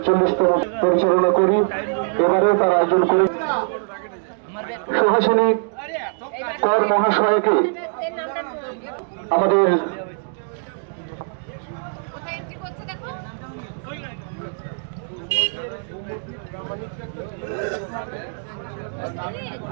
পরিচালনা করি। এবারে তার আয়োজন করি সুহাসিনী কর মহাশয়কে আমাদের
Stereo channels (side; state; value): left; silent; digital silence